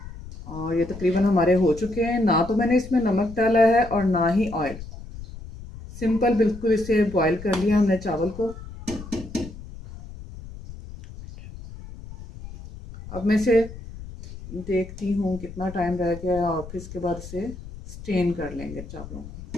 और ये तकरीबन हमारे हो चुके हैं। ना तो मैंने इसमें नमक डाला है और ना ही ऑयल, सिंपल बिल्कुल इसे बॉयल कर लिया हमने चावल को। अब मैं इसे देखती हूँ कितना टाइम रह गया और फिर इसके बाद इसे स्टेन कर लेंगे चावलों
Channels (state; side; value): noise; left; rumble, 14 dB below the sound